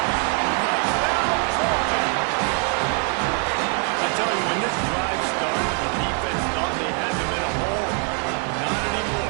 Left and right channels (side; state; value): left; quieter; 36.8 dB